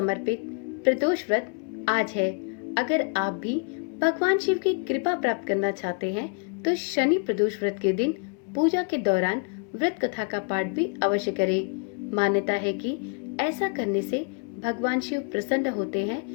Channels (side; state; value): right; quieter; 36.5 dB